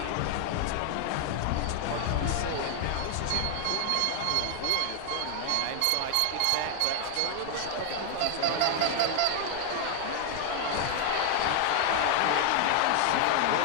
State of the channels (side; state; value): both; different; correlation 0.00